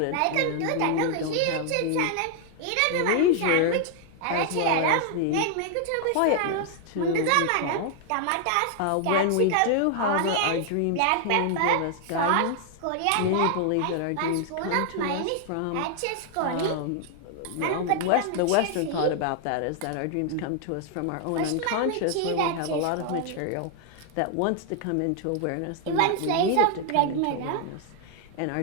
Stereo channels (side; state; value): both; different; correlation 0.00